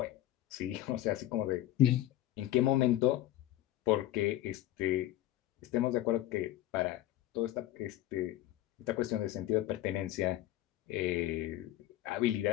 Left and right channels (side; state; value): right; quieter; 14.2 dB